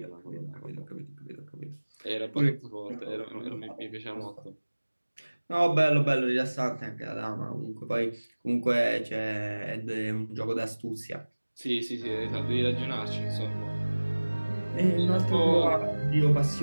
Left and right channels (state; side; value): inverted; both; correlation -1.00